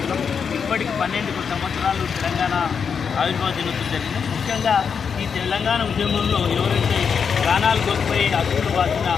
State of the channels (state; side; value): quieter; right; 6.5 dB